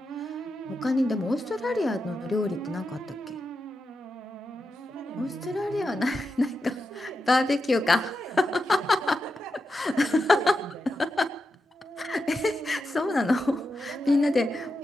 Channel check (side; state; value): both; normal; correlation 0.88